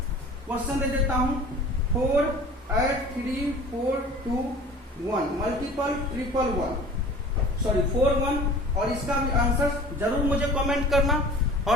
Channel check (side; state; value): both; normal; correlation 0.43